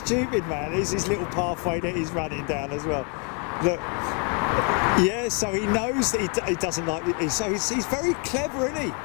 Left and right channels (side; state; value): right; quieter; 32.4 dB